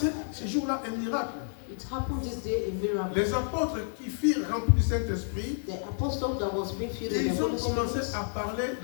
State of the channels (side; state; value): right; silent; digital silence